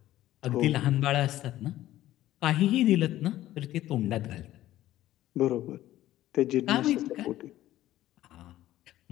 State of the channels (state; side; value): quieter; right; 14.4 dB